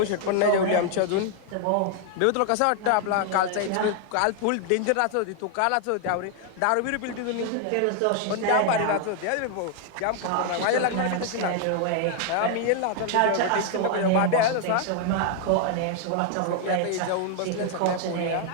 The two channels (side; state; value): both; different; correlation 0.00